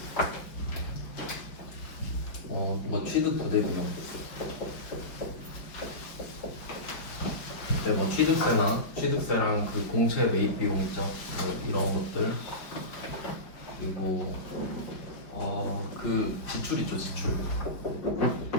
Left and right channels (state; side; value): late; right; 5.1 ms